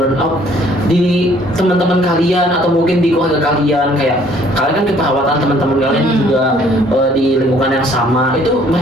di teman-teman kalian atau mungkin di keluarga kalian, kayak kalian kan keperawatan teman-teman kalian juga di lingkungan yang sama, itu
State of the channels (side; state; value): both; normal; correlation 0.60